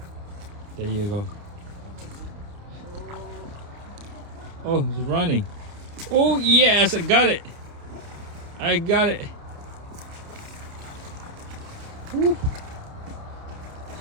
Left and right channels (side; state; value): left; late; 29 ms